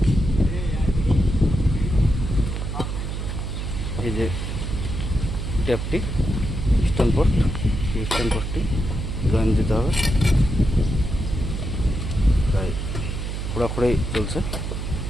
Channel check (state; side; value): noise; right; hum, 4 dB below the sound